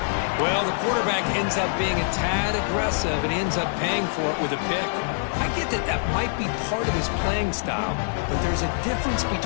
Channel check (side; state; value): right; silent; digital silence